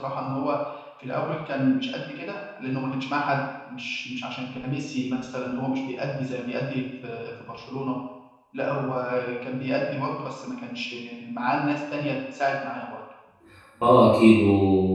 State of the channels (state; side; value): identical; both; correlation 1.00